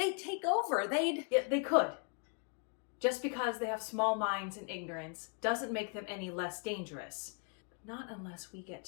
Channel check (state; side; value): quieter; right; 38.9 dB